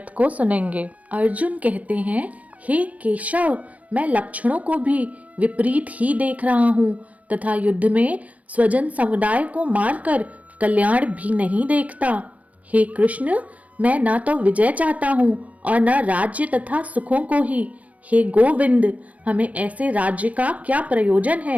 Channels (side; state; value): left; late; 0.068 ms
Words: को सुनेंगे। अर्जुन कहते हैं, हे केशव, मैं लक्षणों को भी विपरीत ही देख रहा हूँ तथा युद्ध में स्वजन समुदाय को मारकर कल्याण भी नहीं देखता। हे कृष्ण, मैं न तो विजय चाहता हूँ और न राज्य तथा सुखों को ही। हे गोविंद, हमें ऐसे राज्य का क्या प्रयोजन